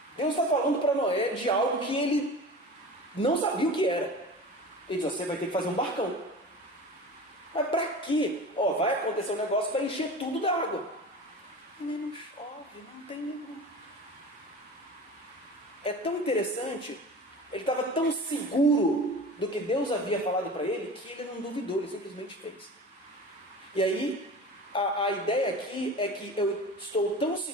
Deus está falando para Noé de algo que ele não sabia o que era. Ele diz, você vai ter que fazer um barcão. Mas para quê? Vai acontecer um negócio para encher tudo d'água. Não chove, não tem nenhum. É tão interessante, ele estava tão seguro do que Deus havia falado para ele, que ele não duvidou, ele simplesmente fez. E aí, a ideia aqui é que eu estou tão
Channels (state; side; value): normal; both; correlation 0.35